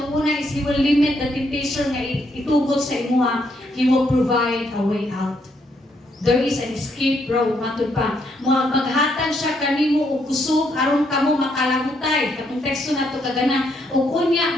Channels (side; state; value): both; normal; correlation 0.74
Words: is He will limit the temptation na itugot sa imuha. He will provide a way out. There is an escape road, matod pa. Maghatag siya kanimo og kusog aron kamo makalahutay. Katong teksto nato kagana, ug unya